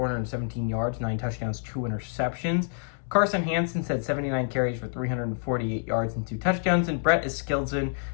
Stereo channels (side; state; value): right; silent; 60 dB below the other